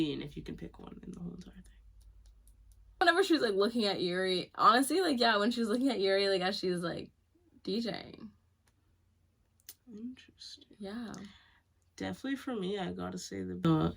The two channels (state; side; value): identical; both; correlation 1.00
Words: if you can pick one in the whole entire thing? Whenever she was, like, looking at Yuri, honestly, like, yeah, when she was looking at Yuri, like, as she was, like, DJing. Interesting. Yeah. Definitely for me, I gotta say